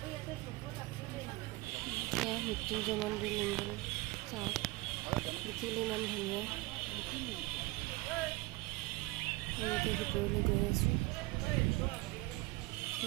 মৃত্যুঞ্জয় মন্দিৰ লিংগ চাওক দেখিলে ইমান ধুনীয়া এনেকৈ ভিতৰলৈ গৈ আছোঁ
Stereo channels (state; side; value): quieter; left; 22.0 dB